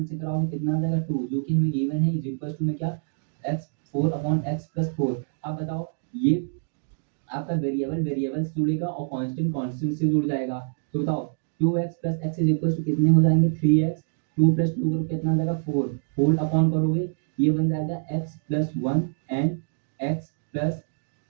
से कराओगे कितना आ जाएगा 2, जो कि हमें गिवन है, इज इक्वल टू में क्या, x 4/x+4। अब बताओ ये आपका वेरिएबल वेरिएबल से जुड़ेगा और कांस्टेंट कांस्टेंट से जुड़ जाएगा। तो बताओ 2x plus x is equal to कितने हो जाएंगे, 3x, 2 प्लस 2 करो कितना आ जाएगा 4, होल अपॉन करोगे ये बन जाएगा x+1 and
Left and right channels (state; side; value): silent; left; digital silence